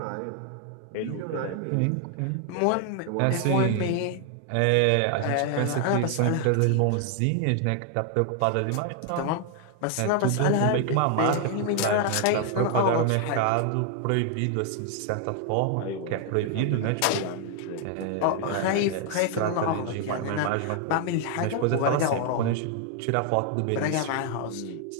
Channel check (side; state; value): both; different; correlation 0.00